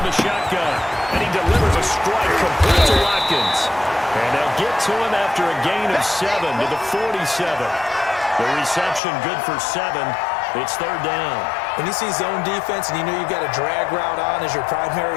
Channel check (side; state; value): right; drops out; at 9.0 s